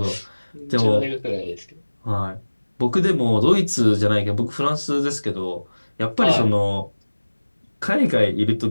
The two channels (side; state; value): both; inverted; correlation -1.00